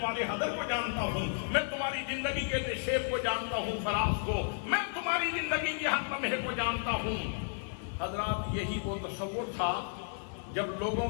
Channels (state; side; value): silent; right; 56 dB below the other